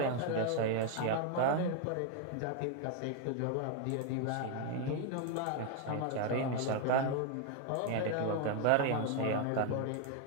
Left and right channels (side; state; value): both; different; correlation 0.01